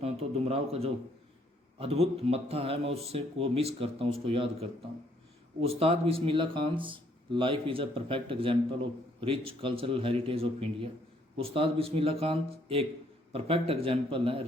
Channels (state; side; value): normal; both; correlation 0.67